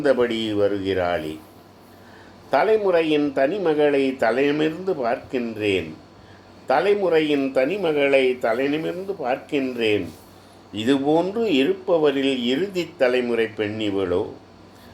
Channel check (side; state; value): both; identical; correlation 1.00